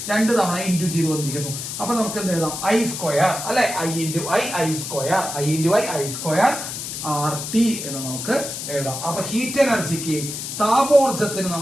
2 തവണ ഇൻടു ചെയ്ത് വന്നിരിക്കുന്നു. അപ്പൊ നമുക്ക് എന്ത് എഴുതാം? ഐ സ്ക്വയർ അല്ലെ? I into I square, I into I square R T എന്ന് നമുക്ക് എഴുതാം. അപ്പൊ ഹീറ്റ് എനർജിക്ക്, താപോർജത്തിന്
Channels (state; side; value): noise; left; hiss, 6 dB below the sound